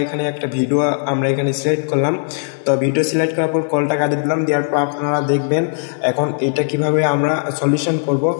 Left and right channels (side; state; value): right; silent; digital silence